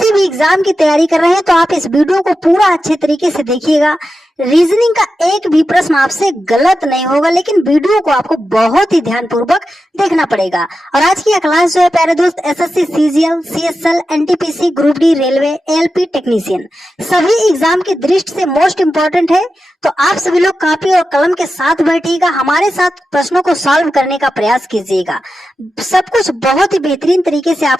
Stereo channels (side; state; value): both; normal; correlation 0.91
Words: भी एग्जाम की तैयारी कर रहे हैं तो आप इस वीडियो को पूरा अच्छे तरीके से देखिएगा। रीजनिंग का एक भी प्रश्न आपसे गलत नहीं होगा, लेकिन वीडियो को आपको बहुत ही ध्यानपूर्वक देखना पड़ेगा। और आज की यह क्लास जो है प्यारे दोस्त, SSC, CGL, CSL, NTPC, group D, railway, LP technician सभी एग्जाम की दृष्टि से मोस्ट इंपॉर्टेंट है। तो आप सभी लोग कॉपी और कलम के साथ बैठिएगा, हमारे साथ प्रश्नों को सॉल्व करने का प्रयास कीजिएगा। सब कुछ बहुत ही बेहतरीन तरीके से